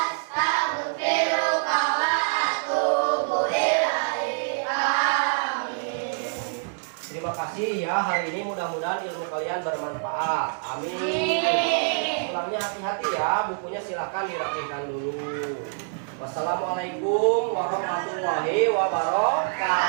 wa atubu ilaik. Amin. Terima kasih ya, hari ini mudah-mudahan ilmu kalian bermanfaat. Amin. Pulangnya hati-hati ya, bukunya silakan dirapikan dulu. Wassalamualaikum warahmatullahi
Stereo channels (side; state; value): left; silent; 57 dB below the other